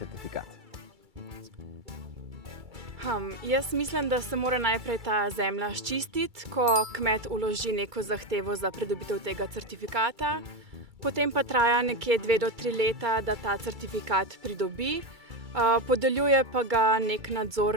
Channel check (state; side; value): late; left; 2.3 ms